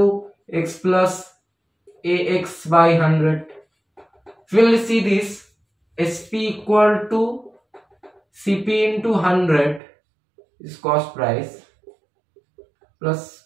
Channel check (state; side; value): drops out; left; at 9.8 s